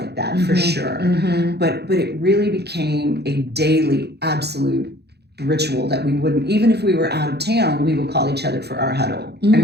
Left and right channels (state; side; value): late; left; 0.48 ms